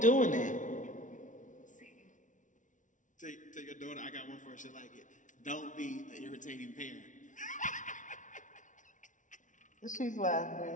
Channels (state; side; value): late; right; 0.37 ms